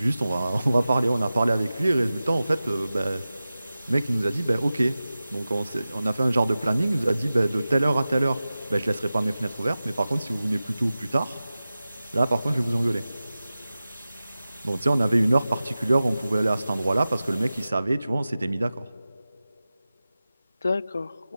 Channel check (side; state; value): both; inverted; correlation -0.95